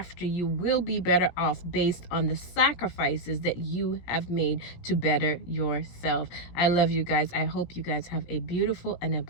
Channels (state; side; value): late; right; 17 ms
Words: you, will be better off based on the sacrifices that you have made to better yourself. I love you guys. I hope you guys have a beautiful and a